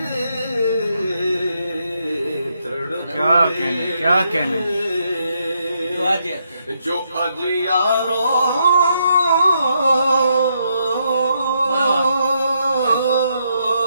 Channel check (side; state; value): both; inverted; correlation -0.78